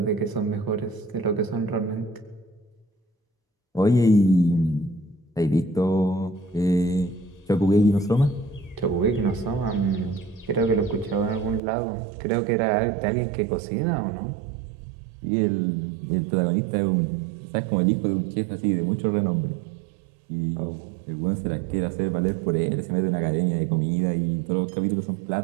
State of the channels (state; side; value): drops out; left; at 11.6 s